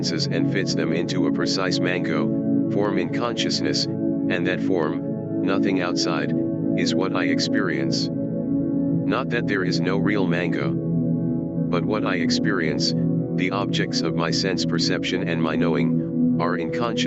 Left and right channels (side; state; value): both; identical; correlation 1.00